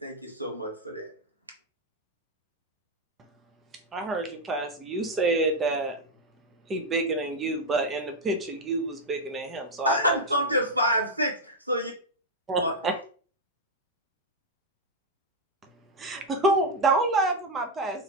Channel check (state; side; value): normal; both; correlation 0.00